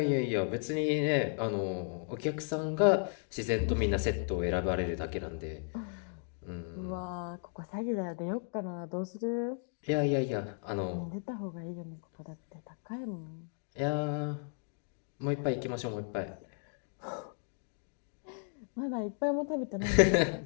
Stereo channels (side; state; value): right; silent; 55 dB below the other